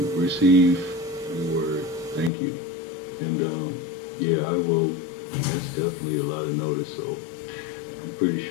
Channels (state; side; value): drops out; right; at 2.3 s